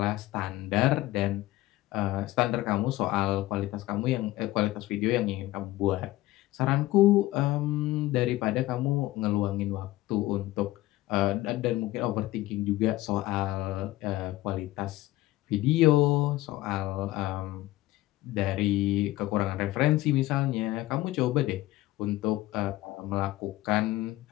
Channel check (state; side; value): quieter; right; 17.1 dB